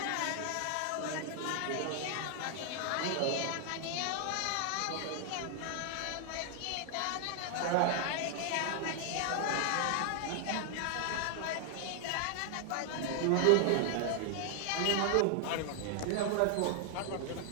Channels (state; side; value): different; both; correlation 0.00